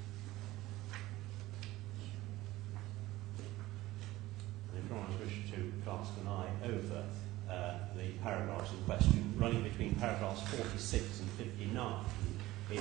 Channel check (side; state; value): left; quieter; 17.5 dB